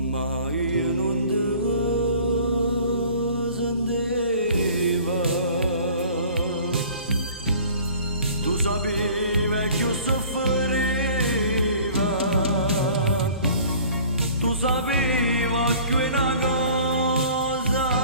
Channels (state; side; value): inverted; both; correlation -0.49